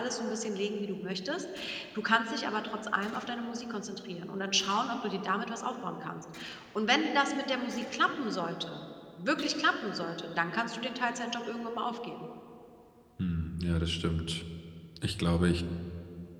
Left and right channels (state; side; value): identical; both; correlation 1.00